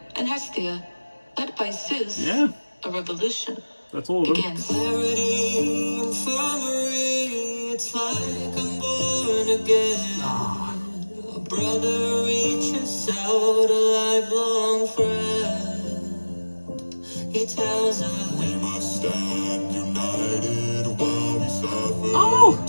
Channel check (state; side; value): inverted; both; correlation -1.00